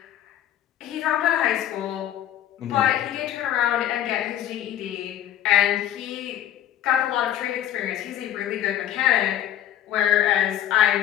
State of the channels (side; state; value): right; quieter; 11.4 dB